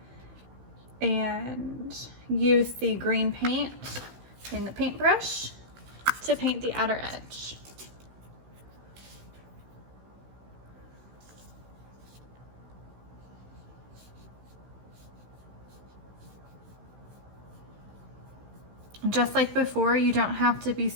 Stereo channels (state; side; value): late; left; 16 ms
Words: And use the green paint in the paintbrush to paint the outer edge. Just like before, you don't have to be